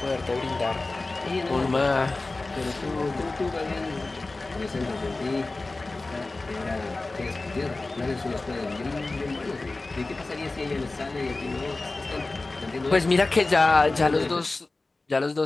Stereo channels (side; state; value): right; quieter; 3.2 dB